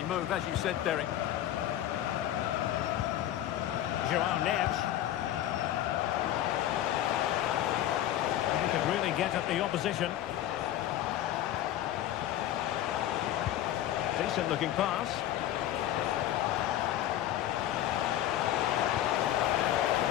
move, as you said, Derek. Joao Neves. He could really get at the opposition. Decent looking pass.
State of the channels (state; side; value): quieter; right; 12.5 dB